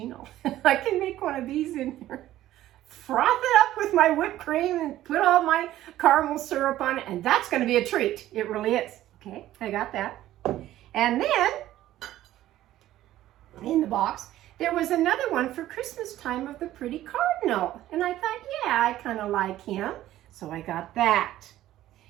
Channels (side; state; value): left; quieter; 14.0 dB